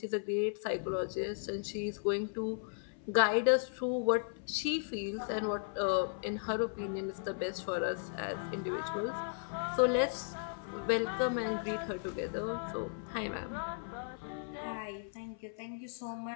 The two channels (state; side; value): silent; right; 54 dB below the other